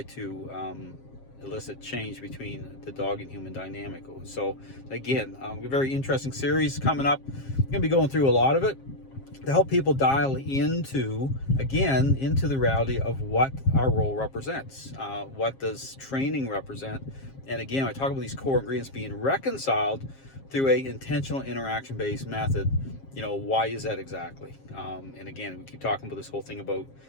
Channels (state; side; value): late; right; 7.5 ms